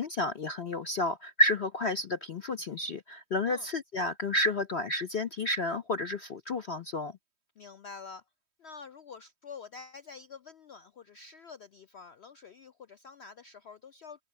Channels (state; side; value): late; right; 3.1 ms